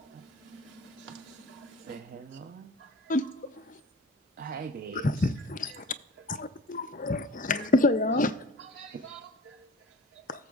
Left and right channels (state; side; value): normal; both; correlation 0.42